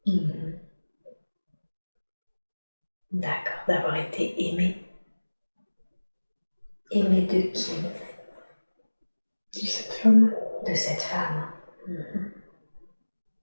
D'accord, d'avoir été aimé. Aimé de qui? De cette femme. De cette femme.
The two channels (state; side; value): inverted; both; correlation -1.00